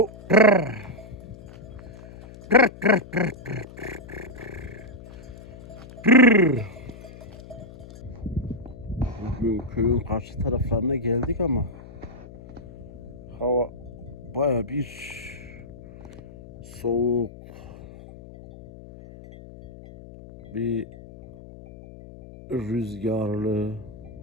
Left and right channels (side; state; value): left; noise; hum, 17 dB below the sound